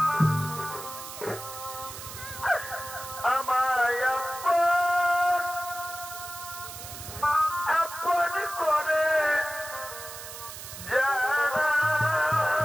আমায় আপন আপন করে যারা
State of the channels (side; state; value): right; noise; hiss, 11 dB below the sound